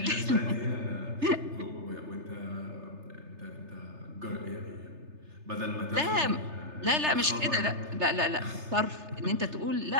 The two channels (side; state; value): left; late; 3.3 ms